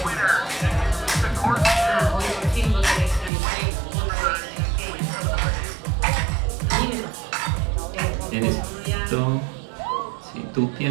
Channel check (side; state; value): left; drops out; at 3.3 s